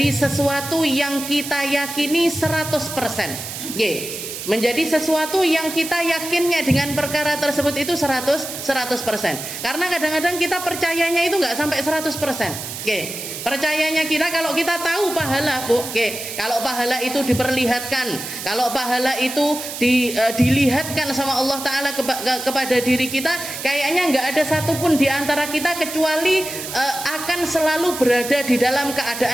sesuatu yang kita yakini 100%. Menjadi sesuatu yang kita yakinnya dengan perkara tersebut itu 100%. Karena kadang-kadang kita percayanya itu nggak sampai 100%. Percayanya kita kalau kita tahu pahala, Bu. Kalau pahala itu diperlihatkan, kalau pahala itu dilihatkan sama Allah Ta'ala kepada diri kita, kayaknya nggak ada satupun di antara kita kecuali akan selalu berada di dalam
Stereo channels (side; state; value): right; noise; hiss, 8 dB below the sound